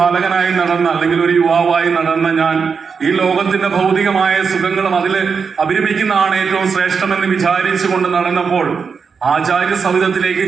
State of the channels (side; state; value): left; quieter; 5.7 dB